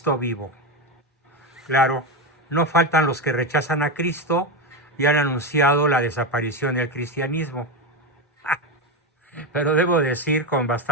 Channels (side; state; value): both; normal; correlation 0.13